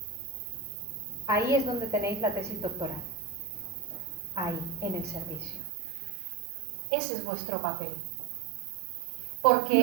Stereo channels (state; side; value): drops out; left; at 5.6 s